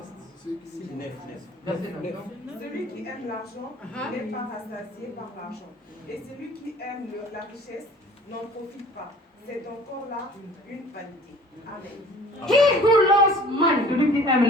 Verset 9. Celui qui aime l'argent n'est pas rassasié par l'argent. Et celui qui aime la richesse n'en profite pas. C'est encore là une vanité. Amen. He who loves money, Celui qui aime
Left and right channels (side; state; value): both; normal; correlation 0.48